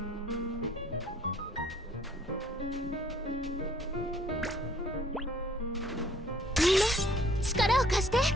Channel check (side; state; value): both; normal; correlation 0.60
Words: みんな力を貸して。